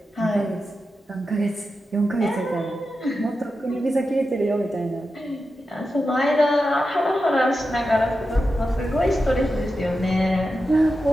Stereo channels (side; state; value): both; normal; correlation 0.90